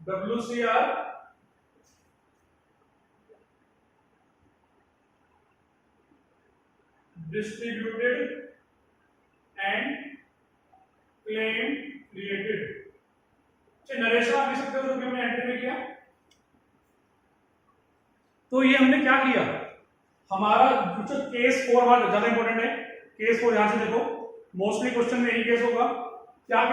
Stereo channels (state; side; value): identical; both; correlation 1.00